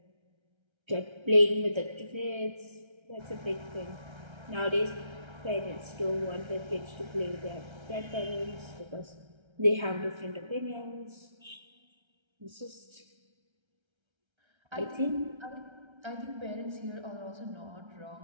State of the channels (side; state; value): left; late; 1.3 ms